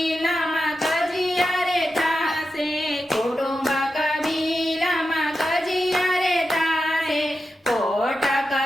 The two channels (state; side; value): normal; both; correlation 0.90